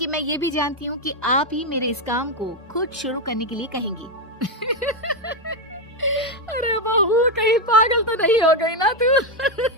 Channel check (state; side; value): normal; both; correlation 0.06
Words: मैं ये भी जानती हूँ कि आप ही मेरे इस काम को खुद शुरू करने के लिए कहेंगी। अरे बहू, कहीं पागल तो नहीं हो गई ना तू?